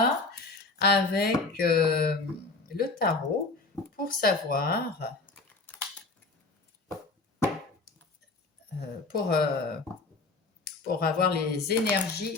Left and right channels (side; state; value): right; quieter; 3.6 dB